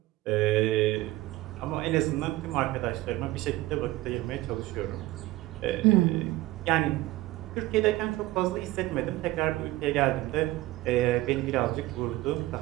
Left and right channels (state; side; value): quieter; left; 17.8 dB